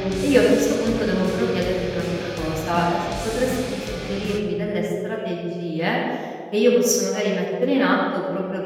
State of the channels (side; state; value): both; identical; correlation 1.00